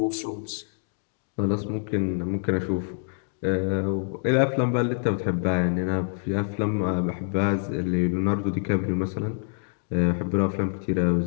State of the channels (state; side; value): silent; right; digital silence